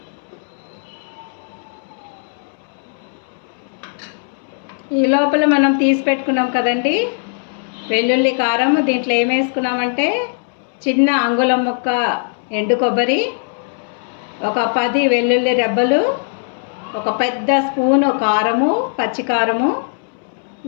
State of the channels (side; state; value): right; silent; 67 dB below the other